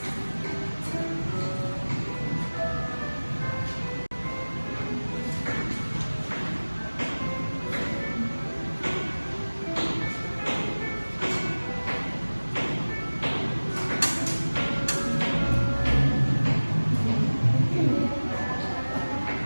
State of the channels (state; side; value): inverted; both; correlation -1.00